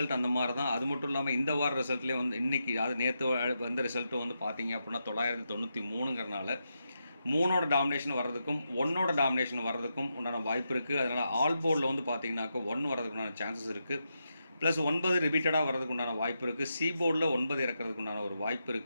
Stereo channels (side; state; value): both; inverted; correlation -0.85